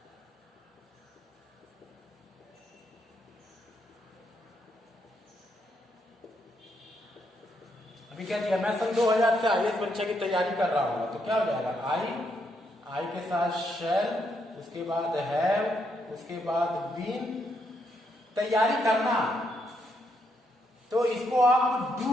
अभी क्या दिया? मैं सन 2000 से आईएएस परीक्षा की तैयारी कर रहा हूँ, तो क्या हो जाएगा? आई के साथ शैल, उसके बाद हैव, उसके बाद बीन, तैयारी करना। तो इसको आप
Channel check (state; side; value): normal; both; correlation 0.77